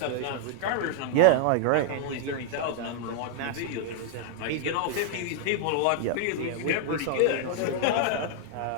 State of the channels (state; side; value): different; both; correlation -0.01